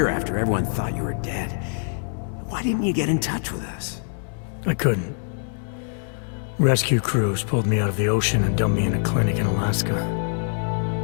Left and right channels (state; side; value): silent; right; 62 dB below the other